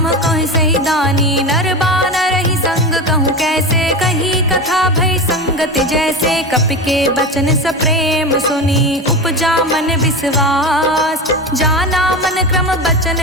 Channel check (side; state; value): both; normal; correlation 0.24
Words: कह सही दानी। नर बानर ही संग कहूँ कैसे कही कथा भई संगति जैसे। कपि के बचन सप्रेम सुनी उपजा मन विश्वास। जाना मन क्रम बचन